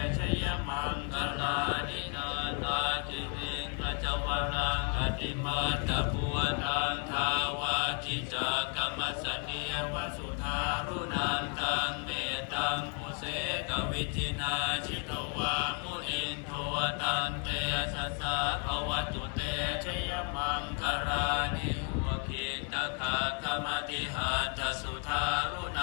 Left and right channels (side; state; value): right; quieter; 37.1 dB